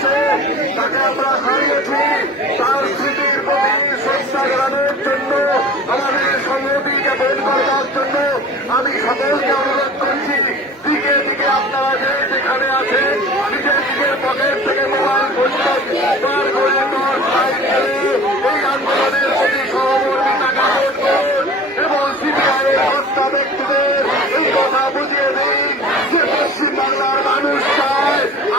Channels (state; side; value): normal; both; correlation 0.40